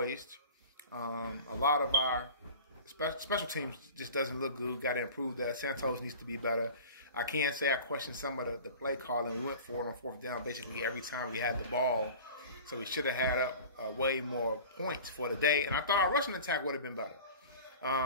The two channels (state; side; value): inverted; both; correlation -0.39